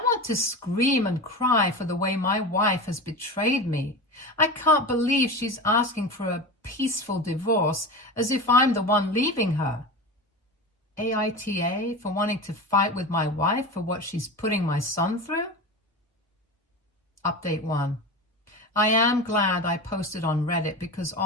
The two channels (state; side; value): normal; both; correlation 0.27